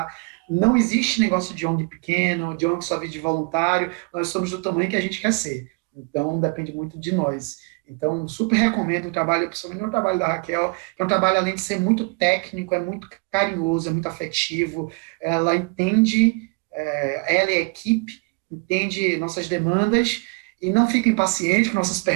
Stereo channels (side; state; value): left; quieter; 31.1 dB